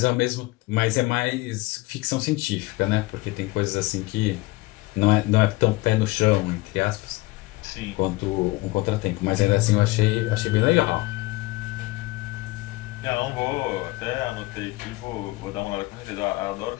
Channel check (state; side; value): quieter; right; 21.2 dB